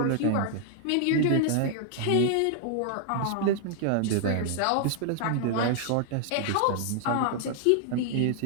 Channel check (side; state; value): both; different; correlation 0.00